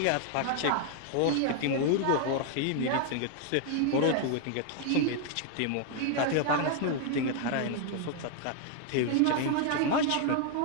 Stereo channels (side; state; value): both; different; correlation 0.00